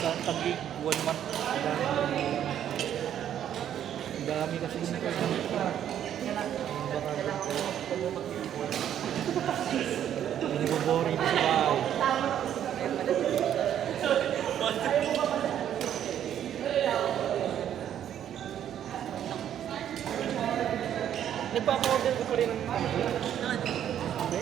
tagig, 1 month. Ang dami kasi yung internet ko. Baka ganito. Hindi ko boring sa bahay. Nagpapa-order ko pa rin ng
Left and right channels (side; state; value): left; quieter; 10.2 dB